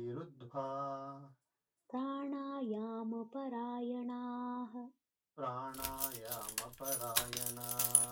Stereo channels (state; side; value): identical; both; correlation 1.00